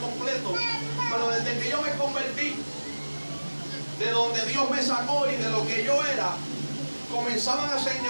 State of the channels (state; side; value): inverted; both; correlation -1.00